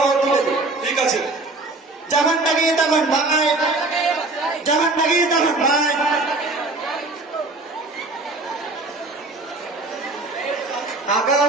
হও, ঠিক আছে। ঠিক আছে। যখন ডাকি তখন ভাই, যখন ডাকি তখন ভাই।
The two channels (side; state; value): left; quieter; 3.1 dB